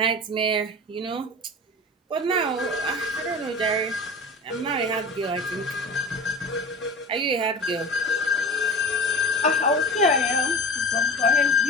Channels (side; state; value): both; normal; correlation 0.36